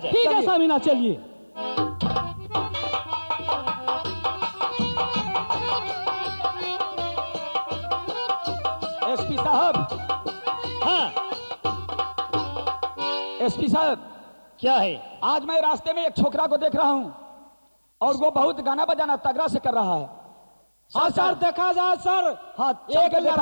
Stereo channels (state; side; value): inverted; both; correlation -1.00